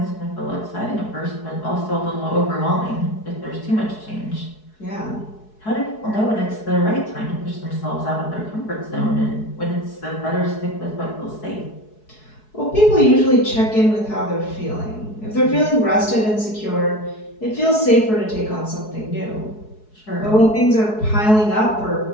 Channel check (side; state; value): right; late; 4.7 ms